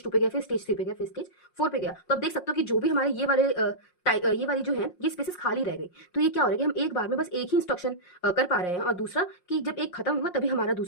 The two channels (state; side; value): late; right; 5.6 ms